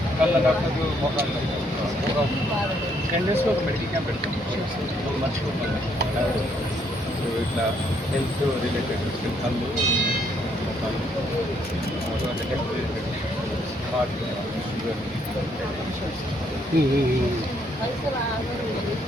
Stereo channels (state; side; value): normal; both; correlation 0.70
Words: డేస్లో ఒక మెడికల్ క్యాంప్ పెడతాం. మర్చిపోతాను ఇట్లా హెల్త్ రిలేటెడ్ కళ్ళు, హెల్త్ రిలేటెడ్, హార్ట్, షుగర్.